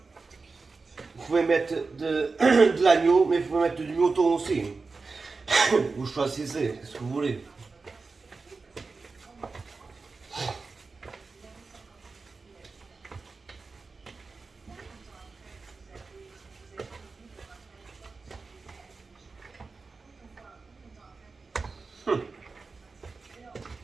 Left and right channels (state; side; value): quieter; left; 4.2 dB